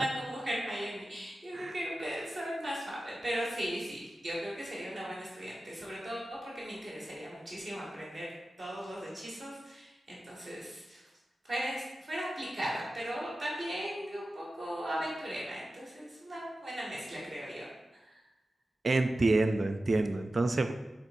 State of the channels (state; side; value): normal; both; correlation 0.94